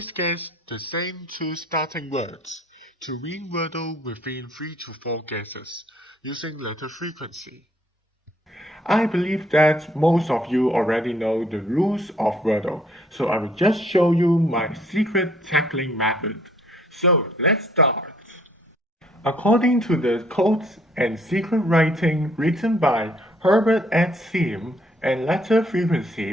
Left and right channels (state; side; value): normal; both; correlation 0.63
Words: guess the same two starting words to win Wordle within 3 to 4 guesses using letter frequency. I believe that most of you already know the rules of Wordle, so I will just show you my secret tackling method. So let's start. According to the codes and secret writing written by Herbert at Sim and letter frequency